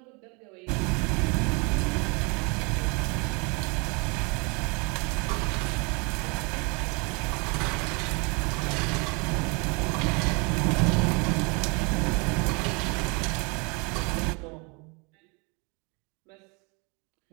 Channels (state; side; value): quieter; left; 31.0 dB